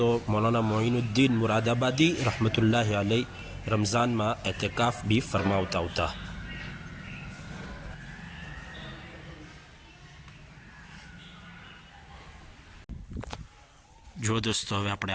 મૌલાના મોઇનુદ્દીન મુરાદાબાદી રહમતુલ્લાહ અલૈહ રમઝાનમાં એતકાફ બી ફરમાવતા હતા જો દોસ્તો હવે આપણે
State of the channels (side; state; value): both; identical; correlation 1.00